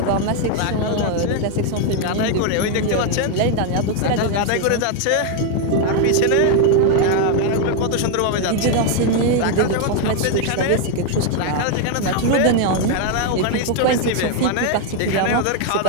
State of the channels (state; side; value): different; both; correlation 0.01